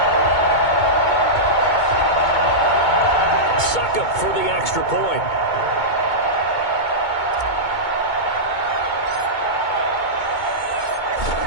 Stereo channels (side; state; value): right; late; 2.2 ms